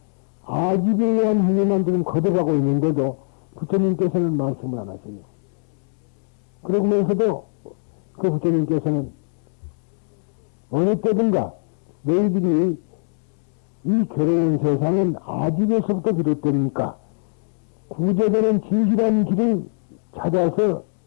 아집에 의한 행위만 지금 거듭하고 있는데도 부처님께서는 말씀을 안 하세요. 그러면서도 그 부처님께서는 어느 때든가 너희들이 이 괴로운 세상은 아집에서부터 비롯되니까 구제되는 진실한 길을 찾아서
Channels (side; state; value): right; silent; digital silence